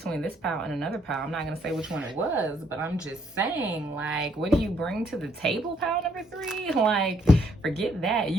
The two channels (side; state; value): both; normal; correlation 0.69